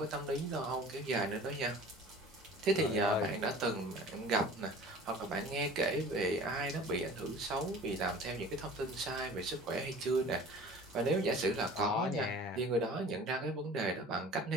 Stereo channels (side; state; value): both; normal; correlation 0.44